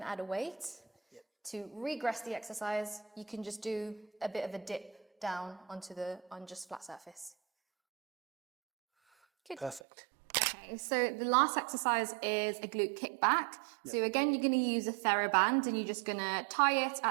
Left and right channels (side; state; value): left; drops out; at 9.8 s